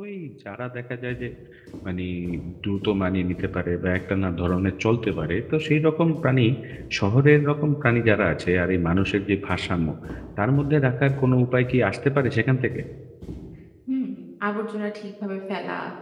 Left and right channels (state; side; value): identical; both; correlation 1.00